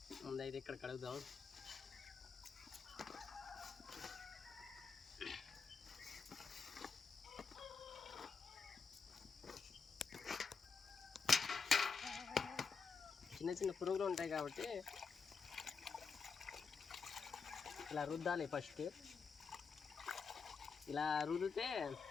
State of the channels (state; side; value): quieter; right; 5.4 dB